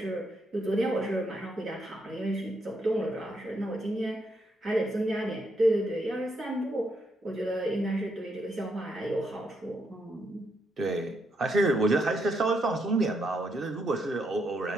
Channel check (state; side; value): normal; both; correlation 0.78